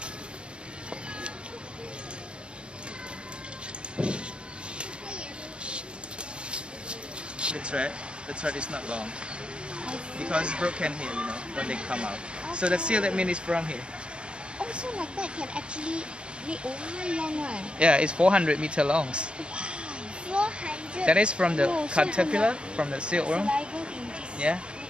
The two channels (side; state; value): left; late; 0.055 ms